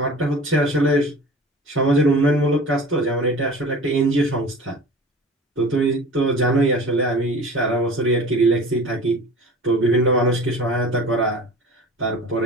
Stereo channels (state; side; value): normal; both; correlation 0.40